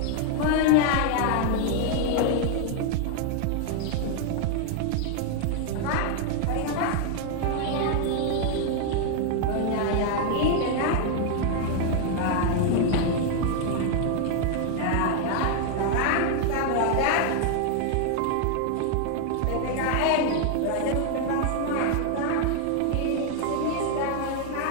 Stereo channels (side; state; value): both; different; correlation 0.00